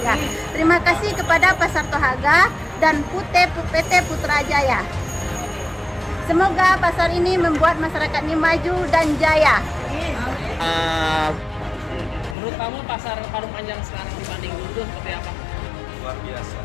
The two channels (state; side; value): drops out; right; at 12.4 s